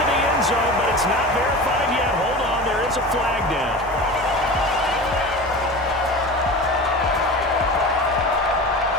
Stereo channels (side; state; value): both; normal; correlation 0.32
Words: the end zone, but it's not verified yet. Hold on, there is a flag down.